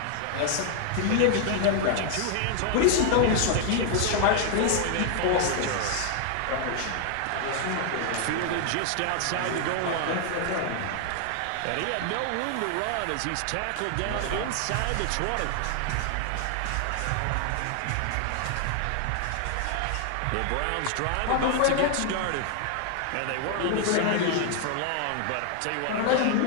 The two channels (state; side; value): different; both; correlation 0.00